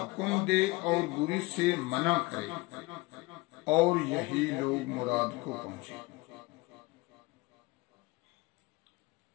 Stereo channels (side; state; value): right; quieter; 22.7 dB